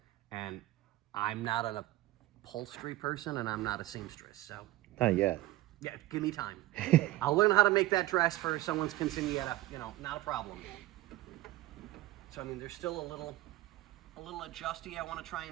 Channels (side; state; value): left; quieter; 17.0 dB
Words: and I'm not an upholstery person, and I'm not a seamstress, so. Not yet. Yeah, give me time. I'll learn how to make that dress for someone's quinceañera, not a problem. So, I mean, there's still a little adjusty I want to try